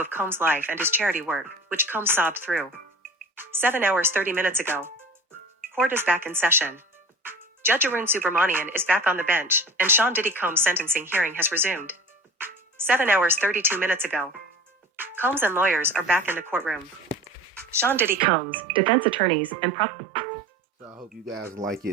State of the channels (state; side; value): normal; both; correlation 0.38